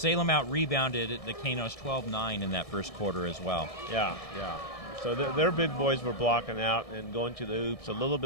out-rebounded the Canos 12-9 in that first quarter as well. Yeah. So their big boys were blocking out and going to the hoops a little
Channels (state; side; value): late; right; 1.6 ms